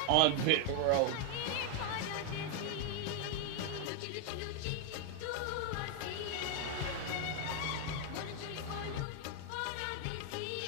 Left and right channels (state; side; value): different; both; correlation 0.00